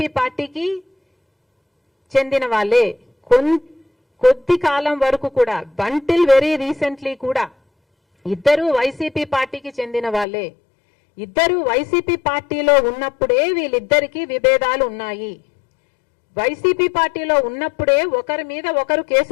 పార్టీకి చెందిన వాళ్ళే. కొద్ది కాలం వరకు కూడా, బంటిల్ వెరీ రీసెంట్లీ కూడా ఇద్దరు వైసీపీ పార్టీకి చెందిన వాళ్ళే. ఇద్దరు వైసీపీ పార్టీలో ఉన్నప్పుడే వీళ్ళిద్దరికీ విభేదాలు ఉన్నాయి. వైసీపీ పార్టీలో ఉన్నప్పుడే ఒకరి మీద ఒకరు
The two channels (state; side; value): drops out; right; at 10.2 s